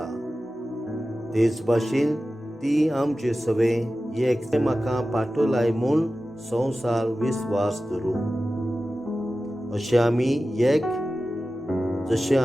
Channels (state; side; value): normal; both; correlation 0.94